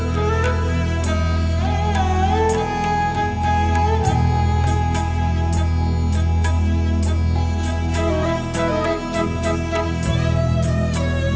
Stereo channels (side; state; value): both; identical; correlation 1.00